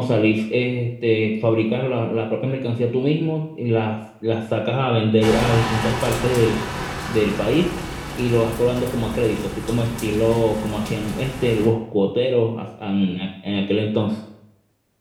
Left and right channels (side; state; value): both; identical; correlation 1.00